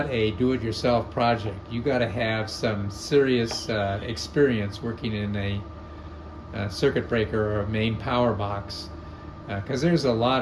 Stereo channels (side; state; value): both; identical; correlation 1.00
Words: a do-it-yourself project. You got to have some serious experience working in a circuit breaker or a main power box, because there's a